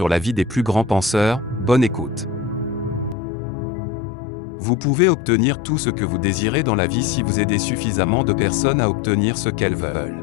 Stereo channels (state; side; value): drops out; right; at 3.2 s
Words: la vie des plus grands penseurs, bonne écoute. Vous pouvez obtenir tout ce que vous désirez dans la vie si vous aidez suffisamment de personnes à obtenir ce qu'elles